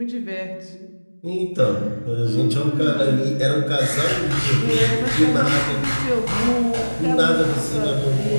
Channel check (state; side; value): inverted; both; correlation -1.00